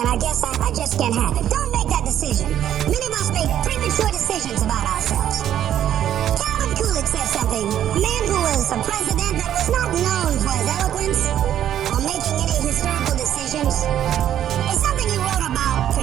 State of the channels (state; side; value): quieter; left; 10.8 dB